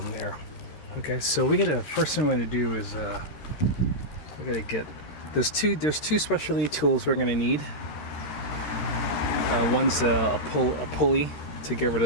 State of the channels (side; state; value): right; late; 13 ms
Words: there. Okay, so we gotta, first thing we're gonna do is we gotta get, there's two specialty tools we're gonna need. One's a pulley to get rid